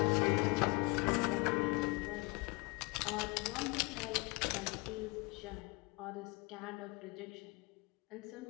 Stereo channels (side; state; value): right; quieter; 28.0 dB